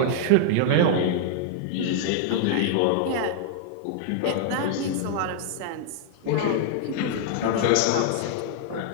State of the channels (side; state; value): both; different; correlation -0.01